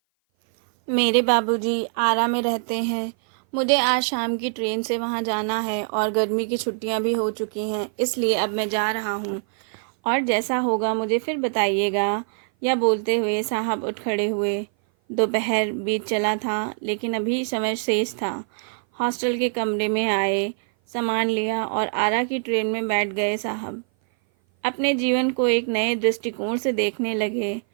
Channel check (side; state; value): left; silent; 57 dB below the other